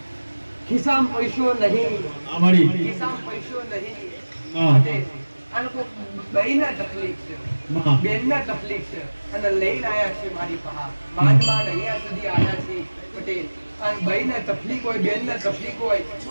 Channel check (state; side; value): inverted; both; correlation -1.00